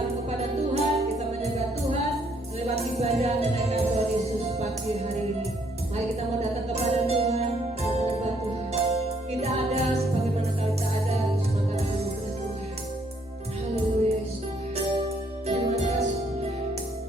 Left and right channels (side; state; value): both; normal; correlation 0.68